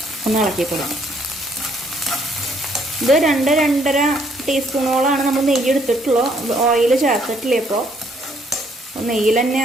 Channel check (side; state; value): both; normal; correlation 0.67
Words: ഒന്ന് ഇളക്കിക്കൊള്ളാം. ഇത് 2-2.5 ടീസ്പൂണോളാണ് നമ്മൾ നെയ്യ് എടുത്തിട്ടുള്ളൂ, ഓയിൽ ചേർത്തിട്ടില്ല. ഇപ്പോൾ നെയ്യിൽ തന്നെ